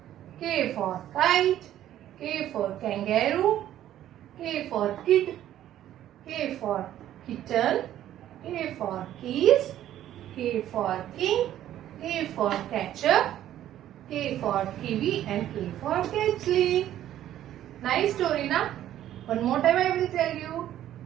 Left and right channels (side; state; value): left; quieter; 12.2 dB